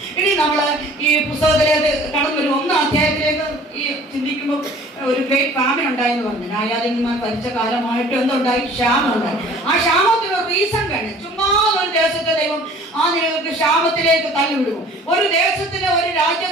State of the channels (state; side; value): normal; both; correlation 0.50